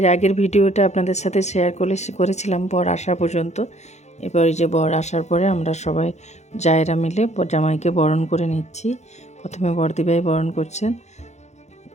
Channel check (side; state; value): right; late; 0.33 ms